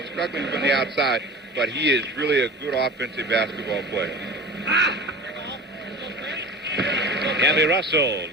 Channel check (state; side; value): normal; both; correlation 0.36